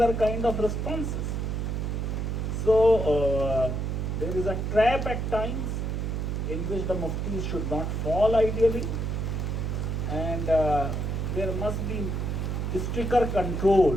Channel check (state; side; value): noise; right; hum, 1 dB below the sound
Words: kind of responses. So there is a trap at times in which the muftis should not fall ideally, and there must be stricter control.